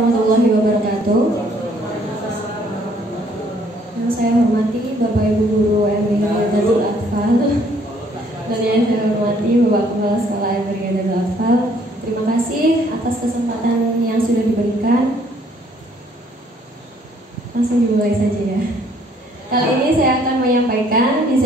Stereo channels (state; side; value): normal; both; correlation 0.63